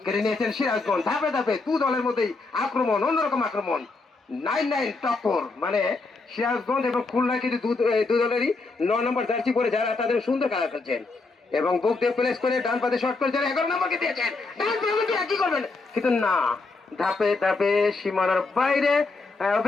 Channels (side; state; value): right; quieter; 3.7 dB